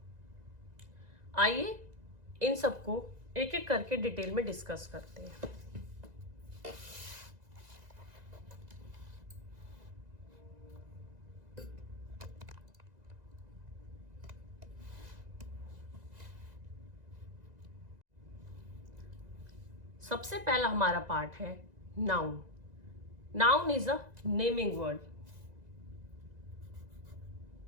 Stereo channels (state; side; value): late; left; 2.0 ms